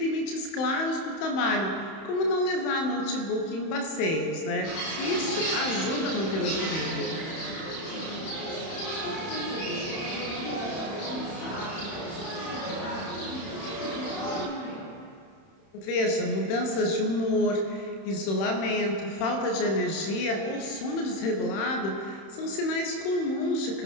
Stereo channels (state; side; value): late; right; 31 ms